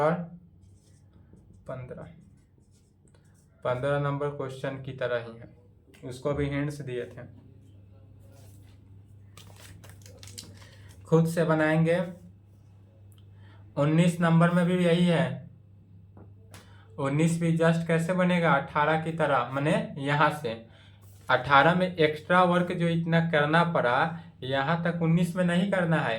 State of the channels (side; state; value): both; identical; correlation 1.00